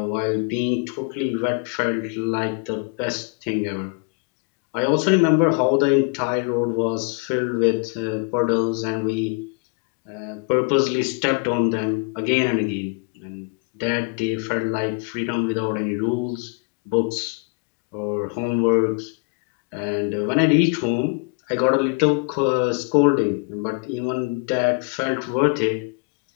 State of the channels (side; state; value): right; quieter; 32.2 dB